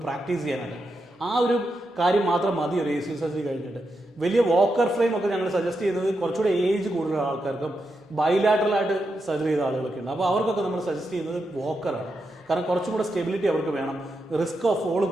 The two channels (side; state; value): both; normal; correlation 0.85